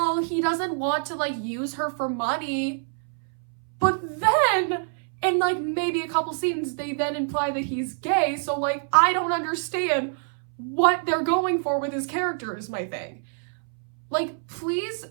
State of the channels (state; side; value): silent; left; 61 dB below the other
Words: he doesn't want to, use her for money. But then, in, maybe a couple scenes, they then imply that he's gay, so, I don't understand what they're going for with his character is my thing. Please,